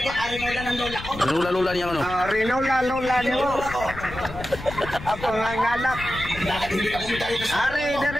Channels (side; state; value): left; noise; rumble, 12 dB below the sound